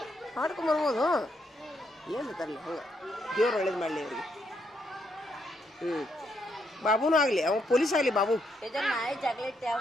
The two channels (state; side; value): normal; both; correlation 0.77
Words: ಮಾಡ್ಕೊಂಬರ್ಬೋದು. ಏನು ತರಲಿ ಹಂಗೆ. ದೇವ್ರು ಒಳ್ಳೇದು ಮಾಡಲಿ ಅವ್ರಿಗೆ. ಬಾಬುನೂ ಆಗಲಿ, ಅವ ಪೊಲೀಸ್ ಆಗಲಿ. ಬಾಬು